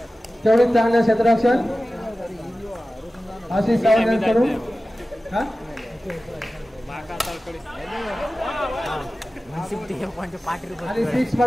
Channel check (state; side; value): normal; both; correlation 0.95